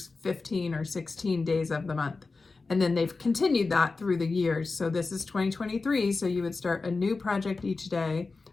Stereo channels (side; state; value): right; quieter; 3.9 dB